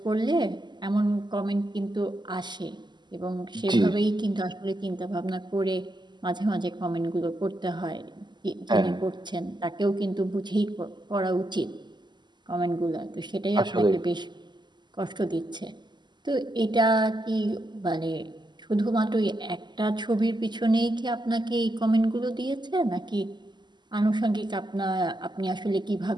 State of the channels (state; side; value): late; left; 0.21 ms